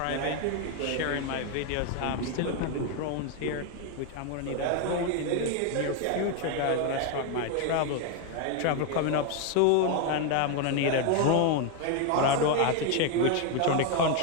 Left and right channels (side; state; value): both; different; correlation 0.01